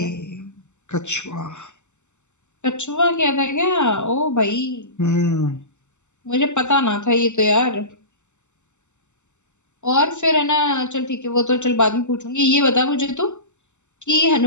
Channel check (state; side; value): late; right; 0.84 ms